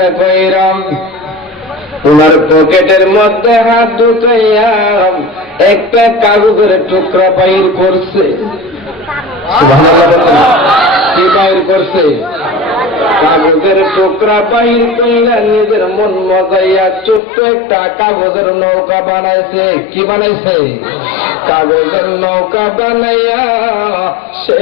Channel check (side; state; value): right; drops out; at 17.2 s